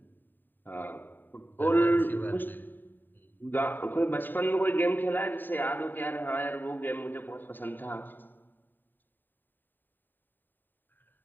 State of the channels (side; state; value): right; late; 0.091 ms